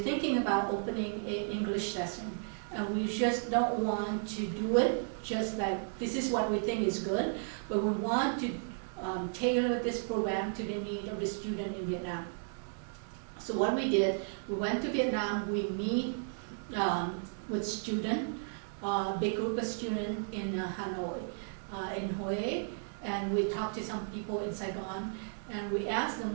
about opening an English session. And we just don't want to do it just like this is what we think is good, but we want to tailor this program to the need of the student in Vietnam. So what we did, we went to Vietnam, we meet with students, big group of students in Hanoi, in Hue, and we talked to some people in Saigon, and we asked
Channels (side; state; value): left; silent; digital silence